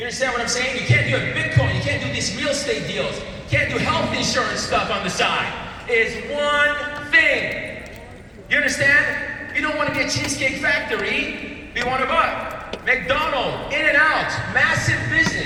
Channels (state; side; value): identical; both; correlation 1.00